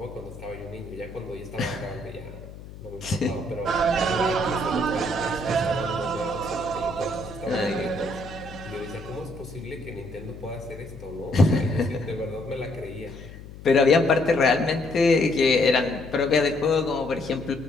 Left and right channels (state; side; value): noise; left; hum, 15 dB below the sound